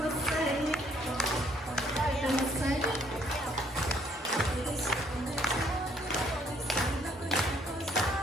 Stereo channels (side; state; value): both; normal; correlation 0.65